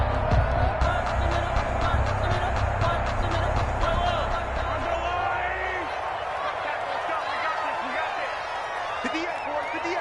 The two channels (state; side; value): identical; both; correlation 1.00